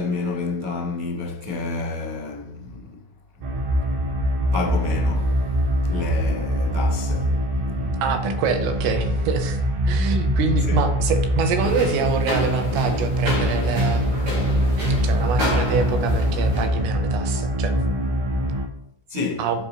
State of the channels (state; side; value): late; left; 16 ms